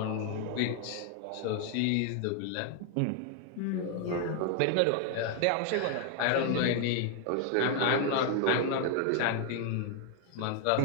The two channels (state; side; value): different; both; correlation 0.00